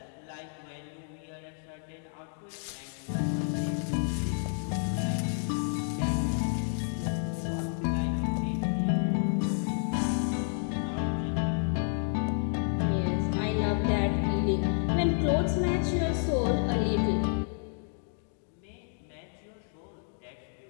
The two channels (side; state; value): right; silent; 58 dB below the other